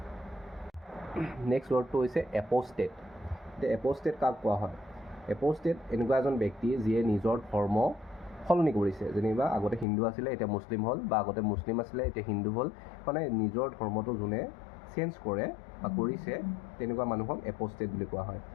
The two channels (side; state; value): right; drops out; at 9.9 s